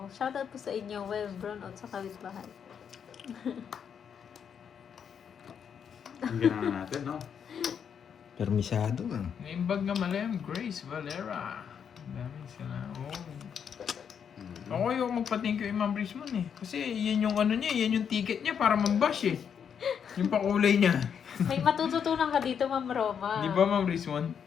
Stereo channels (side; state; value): right; quieter; 7.6 dB